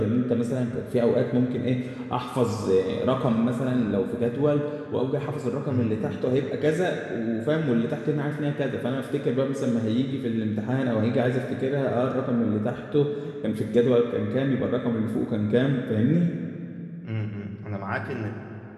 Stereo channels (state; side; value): identical; both; correlation 1.00